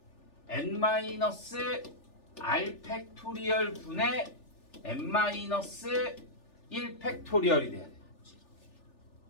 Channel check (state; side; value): late; right; 3.4 ms